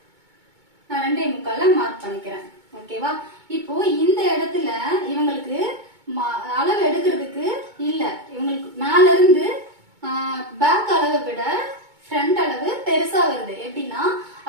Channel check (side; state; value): left; late; 2.2 ms